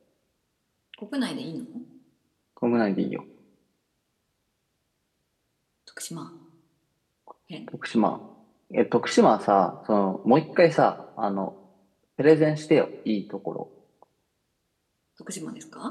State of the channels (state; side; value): identical; both; correlation 1.00